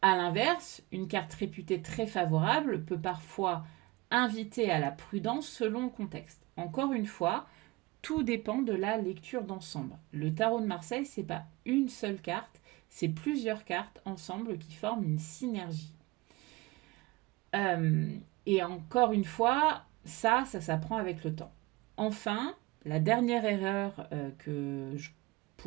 À l'inverse, une carte réputée très favorable peut parfois inviter à la prudence selon le contexte. Encore une fois, tout dépend de la lecture d'ensemble. Le tarot de Marseille, c'est pas une seule carte, c'est plusieurs cartes ensemble qui forment une synergie. Et encore une fois, ça s'apprend avec le temps. Enfin, la dernière erreur que je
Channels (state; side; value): quieter; left; 22.2 dB